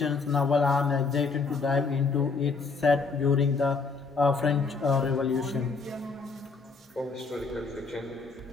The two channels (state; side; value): quieter; right; 4.5 dB